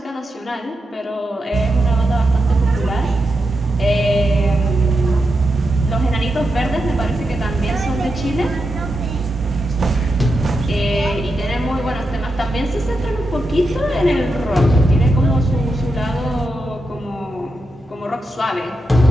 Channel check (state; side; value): normal; both; correlation 0.87